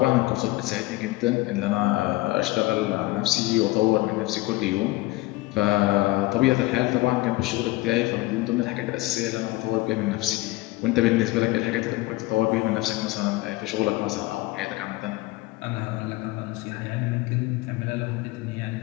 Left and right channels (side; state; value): right; quieter; 20.0 dB